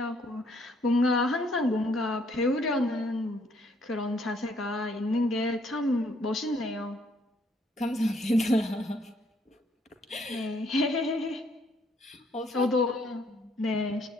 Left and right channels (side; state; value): both; normal; correlation 0.67